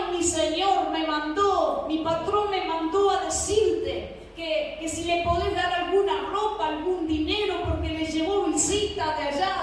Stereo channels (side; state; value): both; identical; correlation 1.00